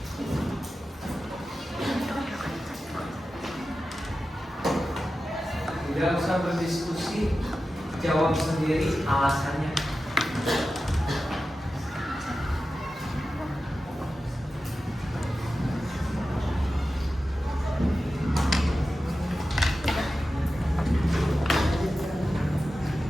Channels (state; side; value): normal; both; correlation 0.93